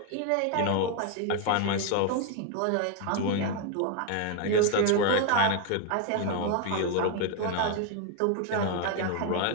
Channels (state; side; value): different; both; correlation 0.01